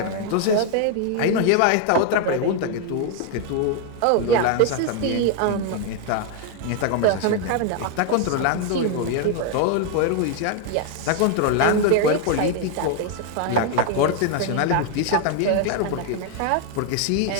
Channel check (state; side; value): different; both; correlation 0.00